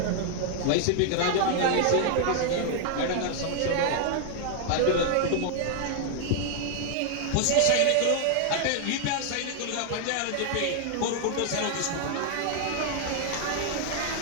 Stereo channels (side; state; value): both; different; correlation 0.00